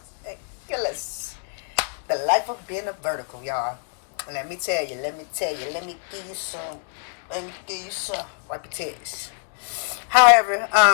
and killers. The life of being a vertical, y'all. Let me tell you. Let me give you some. Wipe your tears. However,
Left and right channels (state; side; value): silent; right; 62 dB below the other